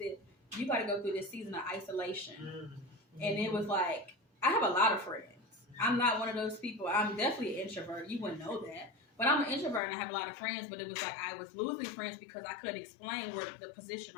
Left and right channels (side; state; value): right; drops out; at 9.8 s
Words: you got to go through this season of isolation. And it was like, I have a lot of friends. I'm not one of those people. I'm definitely an introvert. You wouldn't know that. But I'm an introvert and I have a lot of friends. But it was like I was losing friends because I couldn't explain where the position